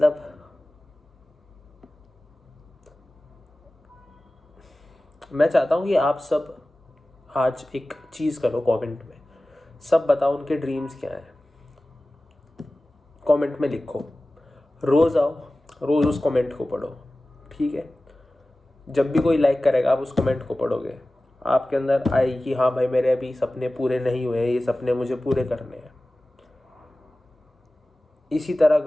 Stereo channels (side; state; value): both; normal; correlation 0.97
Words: मैं चाहता हूँ कि आप सब आज एक चीज़ करो, कमेंट में सब बताओ उनके ड्रीम्स क्या हैं। कमेंट में लिखो, रोज़ आओ, रोज़ उस कमेंट को पढ़ो, ठीक है। जब भी कोई लाइक करेगा आप उस कमेंट को पढ़ोगे, आपके अंदर आएगी कि हाँ भाई मेरे अभी सपने पूरे नहीं हुए, ये सपने मुझे पूरे करने हैं। इसी तरह